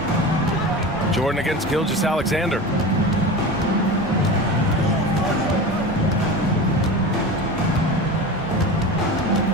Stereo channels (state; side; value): normal; both; correlation 0.29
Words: Jordan against Gilgeous-Alexander.